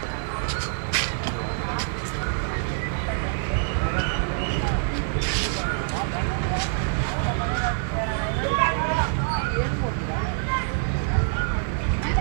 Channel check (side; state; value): left; silent; 61 dB below the other